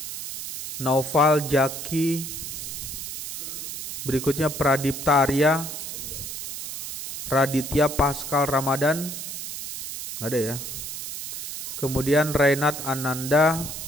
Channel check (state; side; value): noise; right; hiss, 7 dB below the sound